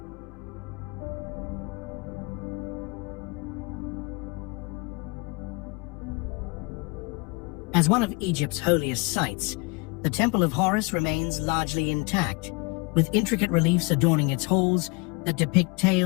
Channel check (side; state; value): right; quieter; 28.7 dB